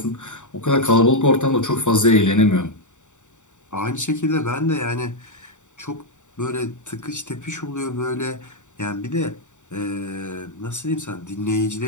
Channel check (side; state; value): right; late; 0.85 ms